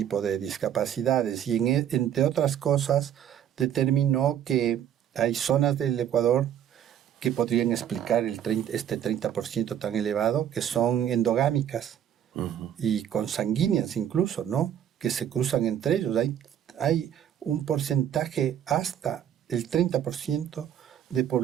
de discapacidades, y entre otras cosas determinó que hay zonas del Ecuador que podrían explicar este 30% tan elevado, que son endogámicas. y consanguíneas incluso, ¿no? Que se cruzan entre ellos. Hay un porcentaje hasta el 30% de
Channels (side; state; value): left; quieter; 9.9 dB